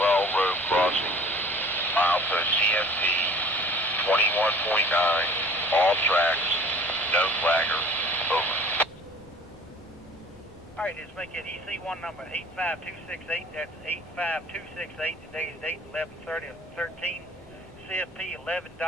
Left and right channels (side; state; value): both; normal; correlation 0.47